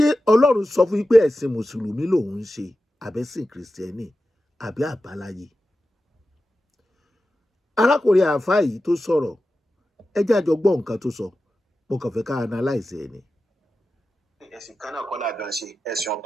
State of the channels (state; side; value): normal; both; correlation 0.92